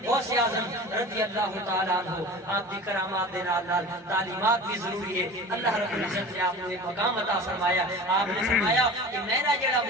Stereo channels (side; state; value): both; normal; correlation 0.36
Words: غوث اعظم رضی اللہ تعالی عنہ آپ دی کرامات دے نال تعلیمات بھی ضروری ہے اللہ رب العزت نے آپ کو ایک مقام عطا فرمایا آپ نے فرمایا کہ میرا جڑا